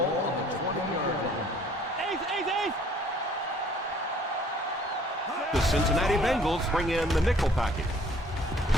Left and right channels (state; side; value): normal; both; correlation 0.57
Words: on the 20-yard line. Ace. The Cincinnati Bengals bring in the nickel package.